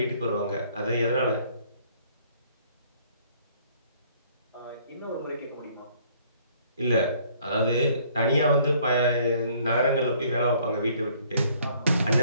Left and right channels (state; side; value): inverted; both; correlation -0.60